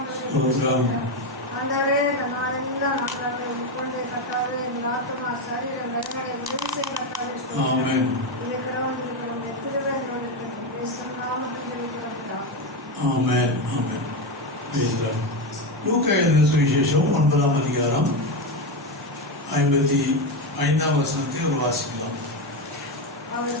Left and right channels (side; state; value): both; normal; correlation 0.12